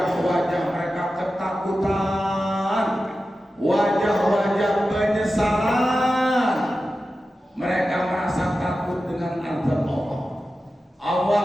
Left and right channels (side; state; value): both; normal; correlation 0.93